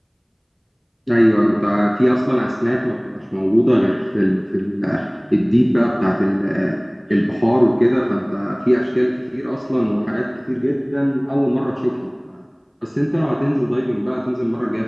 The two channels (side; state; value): both; identical; correlation 1.00